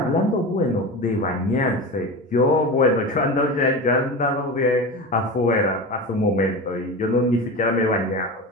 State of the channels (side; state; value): both; normal; correlation 0.27